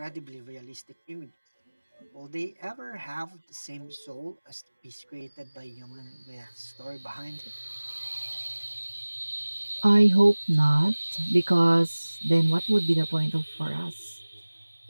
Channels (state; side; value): inverted; both; correlation -1.00